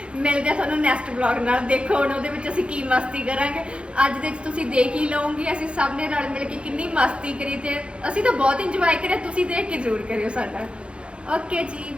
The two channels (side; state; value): left; late; 0.058 ms